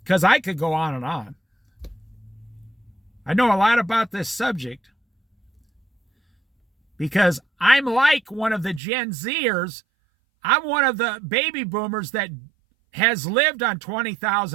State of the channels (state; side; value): drops out; left; at 8.8 s